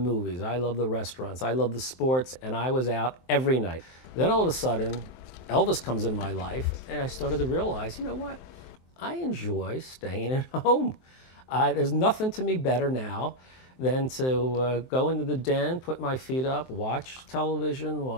I love the restaurants. I love the sports. And I was out every night. Then all of a sudden, Elvis comes in my life, and I started to realize, you know what? I enjoy staying at home. There's nothing to me better now than to go into the den, put my feet up, watch television,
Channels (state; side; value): late; right; 23 ms